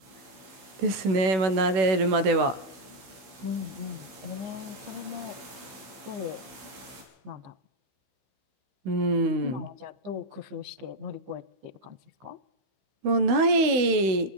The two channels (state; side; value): late; left; 16 ms